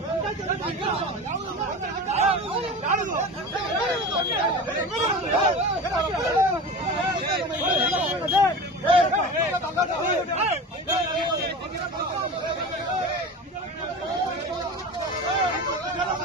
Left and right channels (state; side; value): normal; both; correlation 0.31